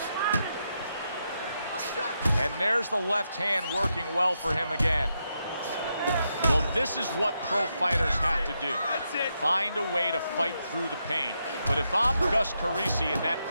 And there's the left hand working well for him again. Well, this is what pro fighters have to do. Find a way to fight through the pain. But if I'm Gus Carisi in that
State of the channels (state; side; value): inverted; both; correlation -0.83